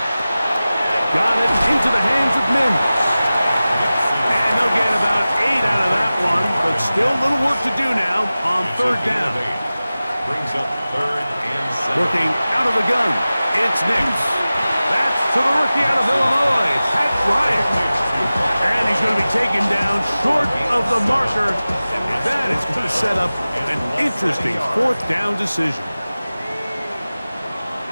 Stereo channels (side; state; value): both; inverted; correlation -0.96